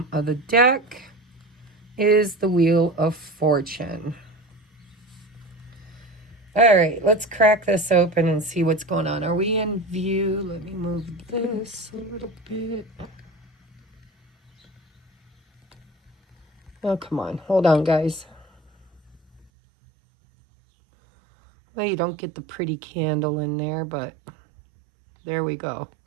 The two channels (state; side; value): drops out; left; at 19.5 s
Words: of the deck is the Wheel of Fortune. All right, let's crack this open and see what's going on. Are we in view? Let me move this a little bit. Oh, come on. Hold on, guys. Well, you don't get the pretty candle in there, but there we go.